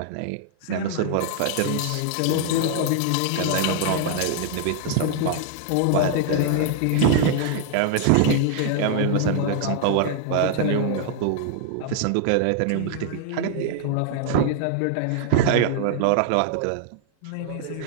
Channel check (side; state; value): both; different; correlation 0.00